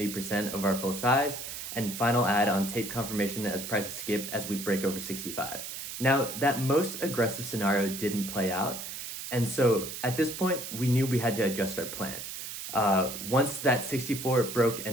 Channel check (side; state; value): right; noise; hiss, 8 dB below the sound